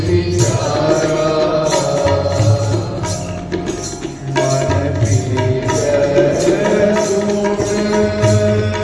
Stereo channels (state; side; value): identical; both; correlation 1.00